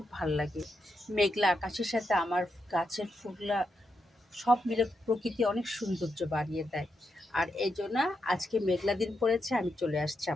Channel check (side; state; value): both; normal; correlation 0.84